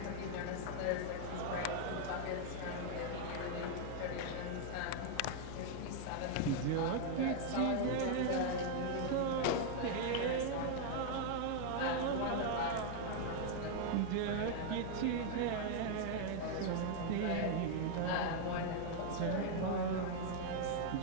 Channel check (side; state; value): both; different; correlation 0.00